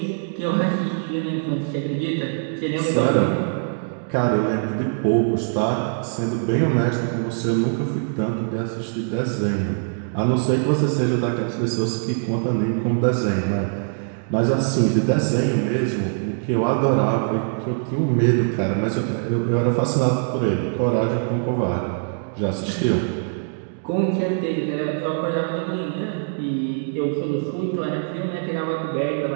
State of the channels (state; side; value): silent; left; digital silence